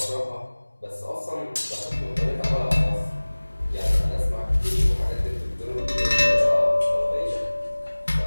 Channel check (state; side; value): inverted; both; correlation -1.00